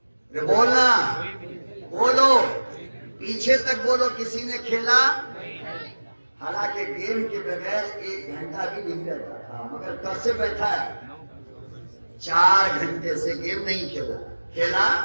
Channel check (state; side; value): inverted; both; correlation -1.00